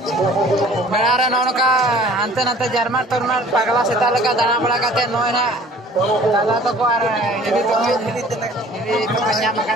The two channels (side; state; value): both; normal; correlation 0.50